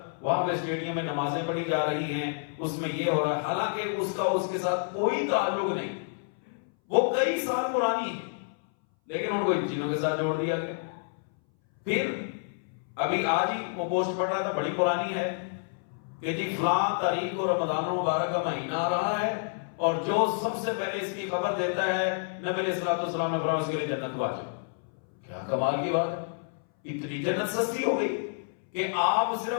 وہاں پہ اسٹیڈیم میں نمازیں پڑھی جا رہی ہیں، اس میں یہ ہو رہا ہے، حالانکہ اس کا اس کے ساتھ کوئی تعلق نہیں، وہ کئی سال پرانی ہے، لیکن ان کو ان چیزوں کے ساتھ جوڑ دیا گیا. پھر ابھی آج ہی وہ پوسٹ پڑھ رہا تھا، بڑی پرانی ہے، کہ جی فلاں تاریخ کو رمضان المبارک کا مہینہ آ رہا ہے اور جو سب سے پہلے اس کی خبر دیتا ہے نبی علیہ الصلوۃ والسلام نے فرمایا اس کے لیے جنت واجب. کیا کمال کی بات ہے، اتنی جنت سستی ہو گئی کہ آپ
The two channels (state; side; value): silent; right; 59 dB below the other